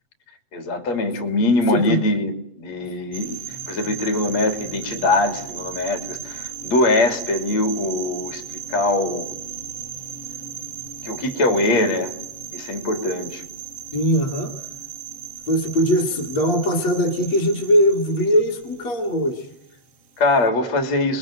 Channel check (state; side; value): late; right; 8.5 ms